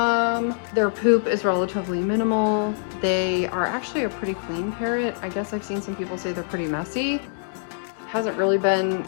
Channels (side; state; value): right; silent; digital silence